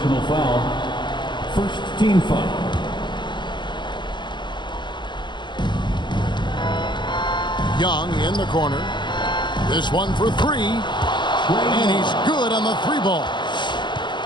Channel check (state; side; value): late; right; 0.22 ms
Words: foul. First team foul. Young in the corner. This one for 3. And he's good on the 3 ball.